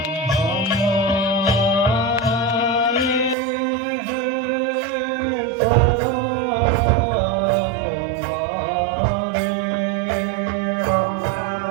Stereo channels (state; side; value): drops out; left; at 3.4 s